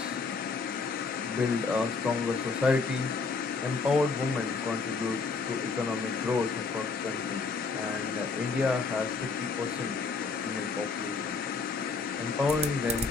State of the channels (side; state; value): right; quieter; 4.5 dB